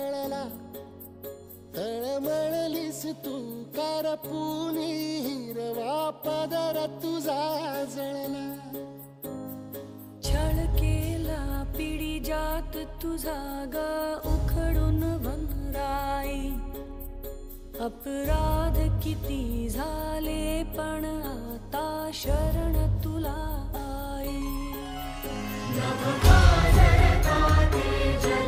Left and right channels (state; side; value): identical; both; correlation 1.00